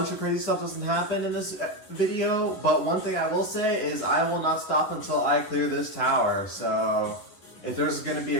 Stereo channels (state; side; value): late; right; 10 ms